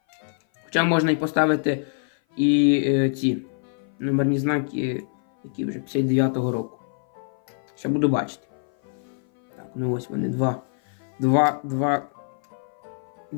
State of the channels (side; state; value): right; silent; 56 dB below the other